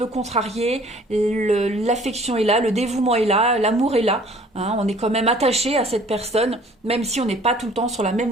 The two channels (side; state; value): both; normal; correlation 0.53